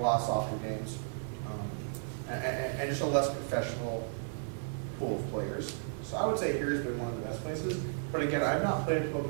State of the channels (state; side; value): silent; left; digital silence